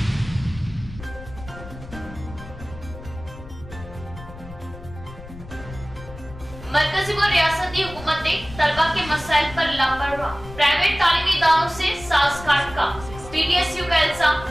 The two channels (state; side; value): noise; left; rumble, 15 dB below the sound